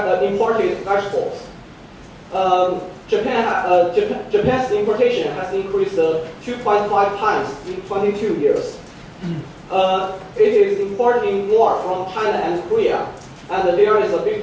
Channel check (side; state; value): both; identical; correlation 1.00